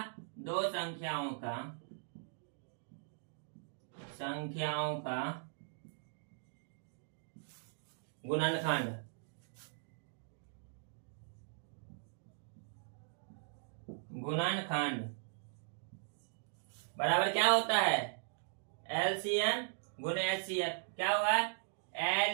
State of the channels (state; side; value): silent; left; digital silence